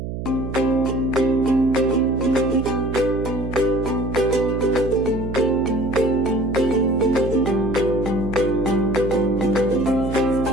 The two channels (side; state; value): right; noise; hum, 6 dB below the sound